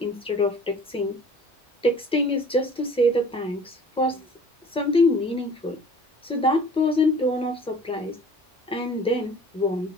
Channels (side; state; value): both; normal; correlation 0.48